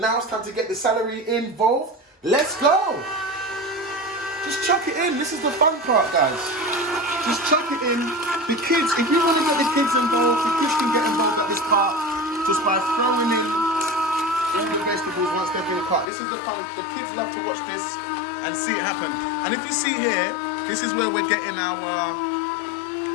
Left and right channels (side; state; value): right; drops out; at 16.1 s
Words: it's time to get the celery involved. Let's go. Just chuck it in. This is the fun part, guys. Just chuck it in. The kids, if you want to get the kids involved, the kids can get involved at this part just by throwing in all the vegetables once they've been cut. This is the fun. The kids love to watch this and see it happen. And if you see here, this is where we're getting our